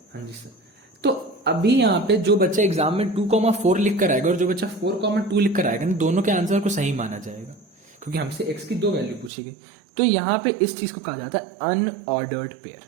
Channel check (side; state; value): left; drops out; at 9.3 s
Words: हाँ जी सर। तो अभी यहाँ पे जो बच्चा एग्जाम में 2,4 लिख कर आएगा और जो बच्चा 4,2 लिख कर आएगा, दोनों के आंसर को सही माना जाएगा क्योंकि हमसे x की दो वैल्यू पूछी गई। तो यहां पे इस चीज को कहा जाता है अनऑर्डर्ड पेयर,